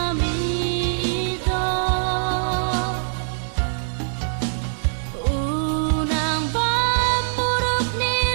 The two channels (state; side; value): silent; left; digital silence